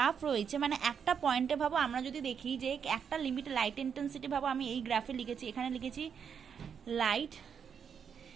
রয়েছে, মানে একটা পয়েন্টে ভাবো আমরা যদি দেখি যে একটা লিমিট লাইট ইন্টেন্সিটি ভাবো, আমি এই গ্রাফে লিখেছি, এখানে লিখেছি লাইট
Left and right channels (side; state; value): left; quieter; 7.2 dB